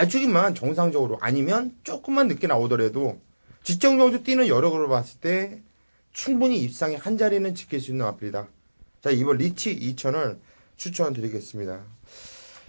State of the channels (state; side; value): inverted; both; correlation -1.00